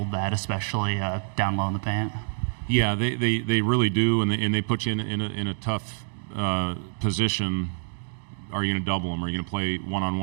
that, especially down low in the paint? Yeah, they really do, and they put you in a tough position. Are you going to double them? Are you going to play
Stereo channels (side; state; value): left; silent; 58 dB below the other